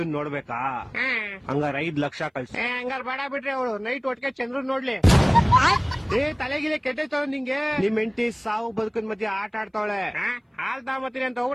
ನೋಡ್ಬೇಕಾ? ಹಂಗಾರ 5 ಲಕ್ಷ ಕಳ್ಸಿ. ಹಂಗಾರ ಬೇಡ ಬಿಟ್ರಿ, ಅವಳು ನೈಟ್ ಒಟ್ಟಿಗೆ ಚಂದ್ರನ್ ನೋಡ್ಲಿ. ತಲೆಗಿಲೆ ಕೆಟ್ಟೈತವ ನಿಂಗೆ. ನಿಮ್ ಹೆಂಡತಿ ಸಾವು ಬದುಕಿನ ಮಧ್ಯೆ ಆಟ ಆಡ್ತಾವಳೆ. ಹಾಲ್ ತಾಮತ್ತೀನಿ ಅಂತ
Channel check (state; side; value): identical; both; correlation 1.00